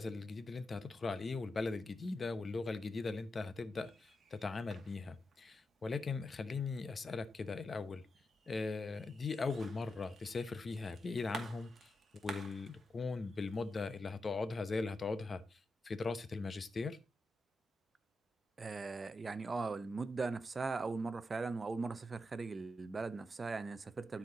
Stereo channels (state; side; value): normal; both; correlation 0.87